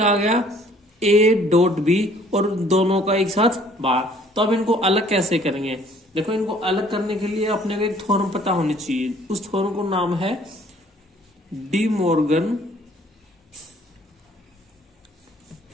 आ गया, ए डॉट बी और दोनों का एक साथ बार। तो अब इनको अलग कैसे करेंगे, देखो इनको अलग करने के लिए अपने को एक थ्योरम पता होनी चाहिए। उस थ्योरम को नाम है डी मॉर्गन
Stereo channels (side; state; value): both; normal; correlation 0.58